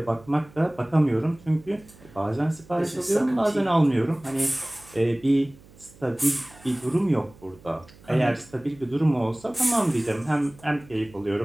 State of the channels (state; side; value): noise; right; hum, 24 dB below the sound